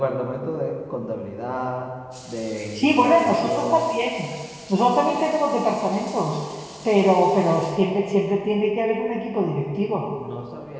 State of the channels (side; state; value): both; identical; correlation 1.00